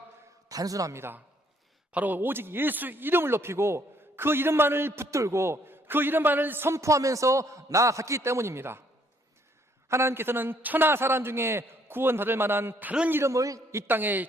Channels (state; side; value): normal; both; correlation 0.66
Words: 단순합니다. 바로 오직 예수 이름을 높이고 그 이름만을 붙들고 그 이름만을 선포하면서 나아갔기 때문입니다. 하나님께서는 천하 사람 중에 구원받을 만한 다른 이름을 이